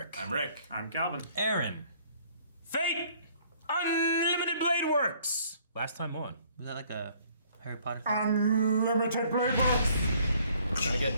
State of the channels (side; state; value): both; inverted; correlation -0.60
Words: I'm Rick. I'm Calvin. Aaron. Fate! Unlimited Blade Works! Last time on. Was that like a Harry Potter thing? Unlimited Blade Works! We're gonna